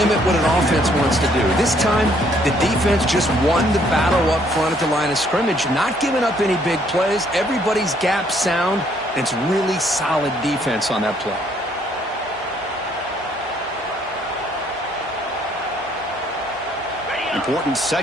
what an offense wants to do. This time, the defense just won the battle up front at the line of scrimmage, not giving up any big plays. Everybody's gap sound. It's really solid defense on that play. Important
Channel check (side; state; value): both; normal; correlation 0.66